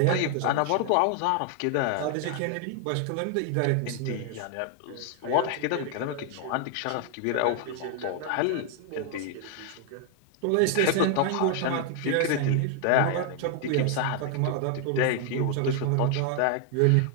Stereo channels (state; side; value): different; both; correlation 0.00